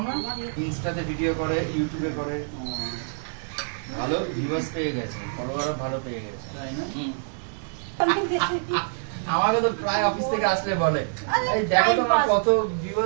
না, ইনস্টাতে ভিডিও করে, ইউটিউবে করে, ভালো ভিউয়ার্স পেয়ে গেছে, ফলোয়ারও ভালো পেয়ে গেছে, তাই না? আমাকে তো প্রায় অফিস থেকে আসলে বলে এই দেখো তোমার কত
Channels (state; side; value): silent; left; 61 dB below the other